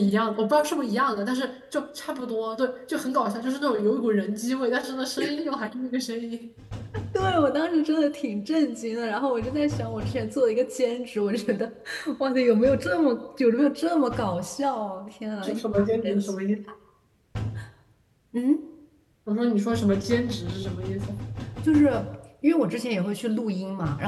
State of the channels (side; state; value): both; identical; correlation 1.00